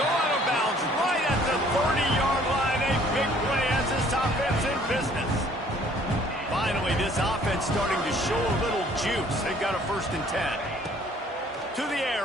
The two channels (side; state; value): both; normal; correlation 0.58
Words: go out of bounds right at the 30-yard line. A big play as this offense in business. Finally, this offense starting to show a little juice. They've got a 1st and 10. To the